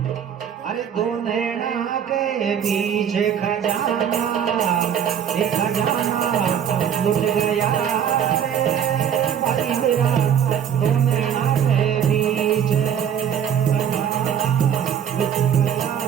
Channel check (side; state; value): left; quieter; 8.7 dB